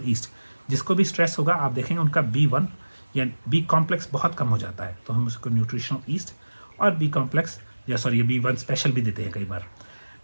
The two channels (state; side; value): inverted; both; correlation -1.00